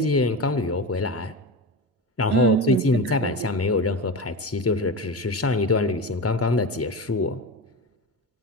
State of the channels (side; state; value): both; normal; correlation 0.24